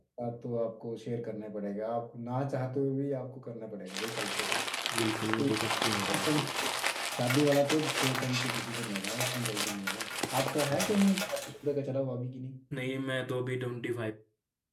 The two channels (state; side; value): identical; both; correlation 1.00